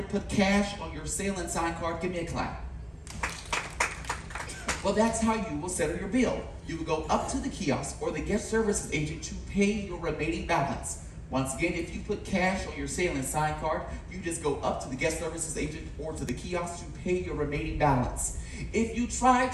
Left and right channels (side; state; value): both; identical; correlation 1.00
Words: put cash on your sail and sign card? Give me a clap. Well, that's how you will settle your bill. You will go up to the kiosk or the guest services agent to pay your remaining balance. Once again, if you put cash on your sail and sign card, you just go up to the guest services agent or to the kiosk to pay your remaining balance. If you try